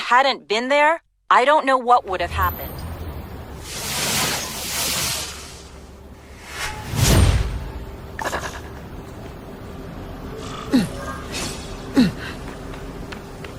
been there, I don't know what would have happened.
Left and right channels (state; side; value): identical; both; correlation 1.00